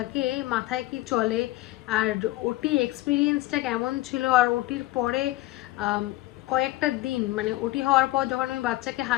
মাথায় কি চলে আর ওটি এক্সপিরিয়েন্সটা কেমন ছিল, আর ওটির পরে কয়েকটা দিন মানে ওটি হওয়ার পর যখন আমি বাচ্চাকে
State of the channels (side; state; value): right; quieter; 18.1 dB